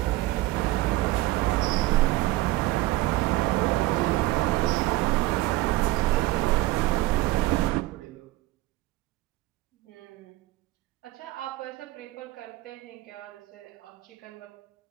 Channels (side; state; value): left; quieter; 18.2 dB